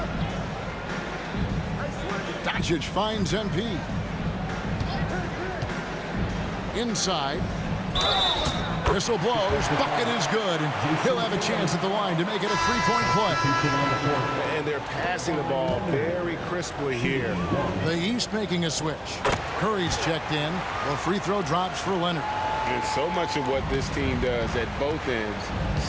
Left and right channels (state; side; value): identical; both; correlation 1.00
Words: Doncic finds MP. Inside. Whistle blows. Bucket is good. And he'll have a chance at the line to make it a 3-point play. And they're passing the ball very crisply here. The East making a switch. Curry's checked in. The free throw drops for Leonard. And so much of what this team does at both ends